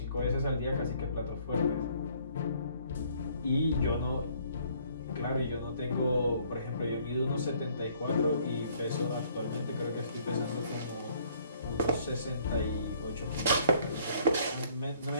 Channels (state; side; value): inverted; both; correlation -0.62